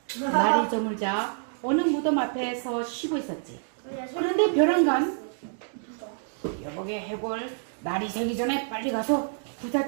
날이 저물자 어느 무덤 앞에서 쉬고 있었지. 그런데 벼랑간 여보게 해골 날이 새기 전에 빨리 가서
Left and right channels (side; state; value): left; silent; digital silence